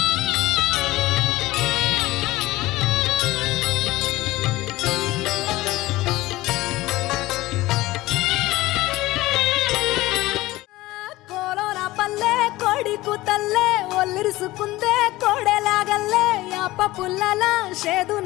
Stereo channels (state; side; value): quieter; right; 18.3 dB